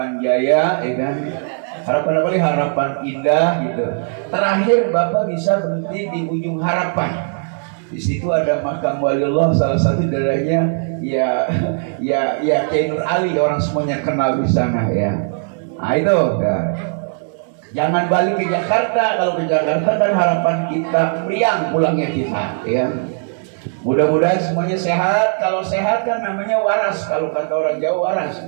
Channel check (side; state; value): left; silent; 59 dB below the other